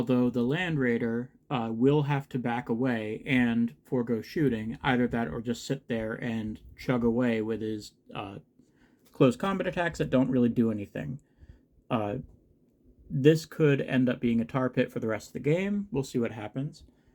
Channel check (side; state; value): both; identical; correlation 1.00